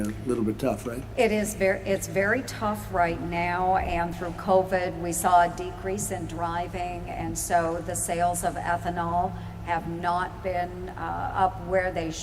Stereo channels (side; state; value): both; identical; correlation 1.00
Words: little bit tough, right? It's very tough right now, and through COVID, we saw a decrease in driving, and so the sales of ethanol have not been up where they